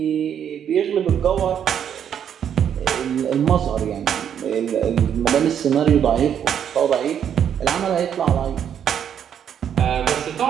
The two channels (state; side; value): quieter; left; 8.8 dB